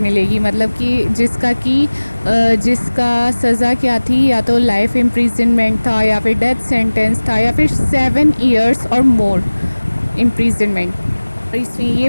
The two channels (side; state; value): both; inverted; correlation -1.00